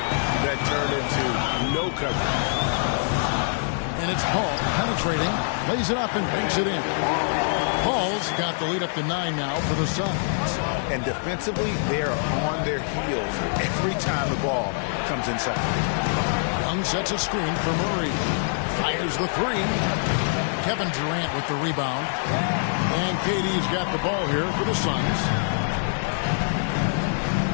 that turned into no coverage. And it's Paul penetrating, lays it up and banks it in. Paul's got the lead up to 9 now for the Suns. And defensively, they are on their heels every time the ball comes inside. Young sets a screen for Murray. Fires the 3. Kevin Durant with the rebound. And KD's got the ball here for the Suns.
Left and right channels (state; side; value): silent; right; digital silence